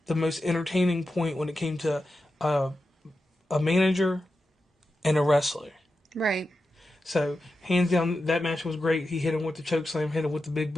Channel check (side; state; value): both; normal; correlation 0.90